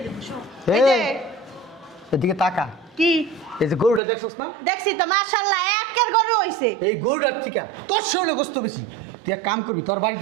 দেব সব এই যে এদিকে তাকা কি এই যে গরুটা দেখছস না দেখছি তো মাশাআল্লাহ একের গরু হইছে এই গরুটার থেকে তোর শরীরে গোস্ত বেশি তুই এক কাম করবি তোর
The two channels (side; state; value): left; drops out; at 4.0 s